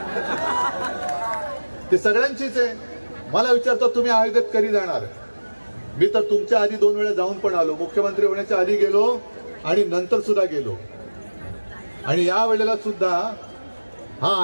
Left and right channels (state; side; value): inverted; both; correlation -1.00